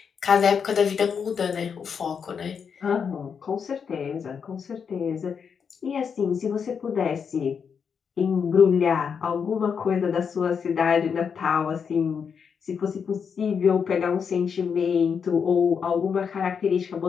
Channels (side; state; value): right; quieter; 6.6 dB